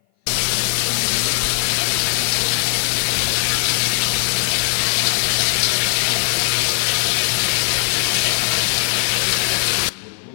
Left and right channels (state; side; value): silent; right; 58 dB below the other